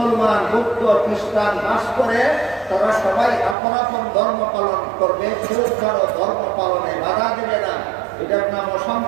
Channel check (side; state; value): left; drops out; at 3.6 s